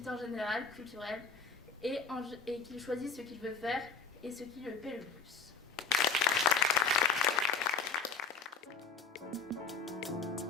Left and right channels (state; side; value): quieter; right; 5.1 dB